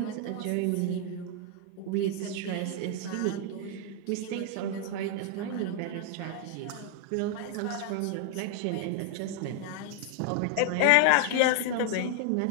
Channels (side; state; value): both; different; correlation 0.00